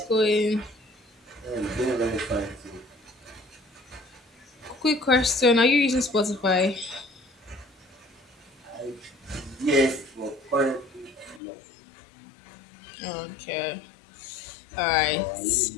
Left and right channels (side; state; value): right; drops out; at 11.4 s